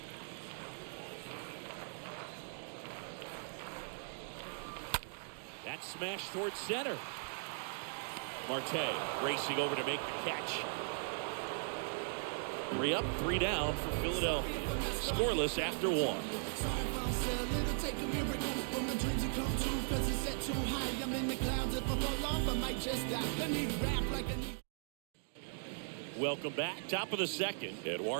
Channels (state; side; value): silent; left; digital silence